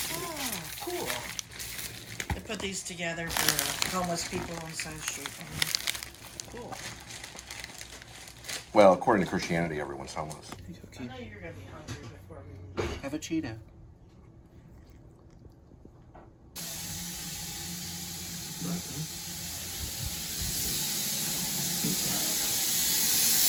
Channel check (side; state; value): both; identical; correlation 1.00